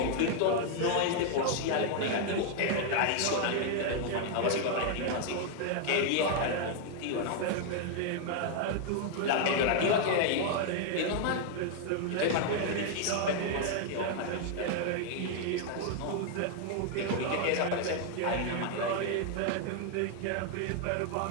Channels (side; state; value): both; different; correlation 0.00